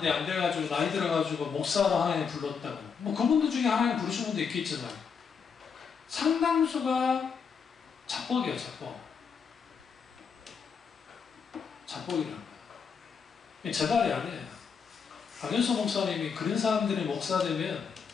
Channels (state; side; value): quieter; right; 6.2 dB